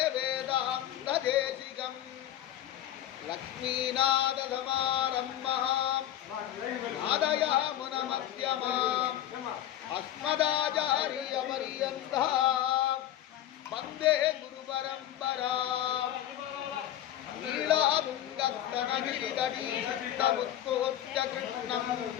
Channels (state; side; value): quieter; right; 12.2 dB